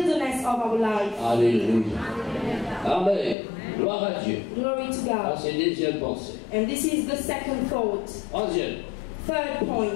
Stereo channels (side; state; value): right; drops out; at 3.4 s